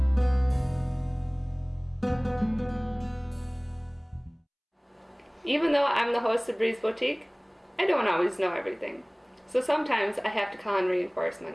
Even though I'm the host of Breeze Boutique, I don't always know everything. So sometimes I have to call in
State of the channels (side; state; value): both; identical; correlation 1.00